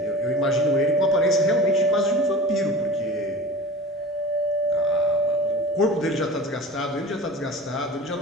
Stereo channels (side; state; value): both; normal; correlation 0.36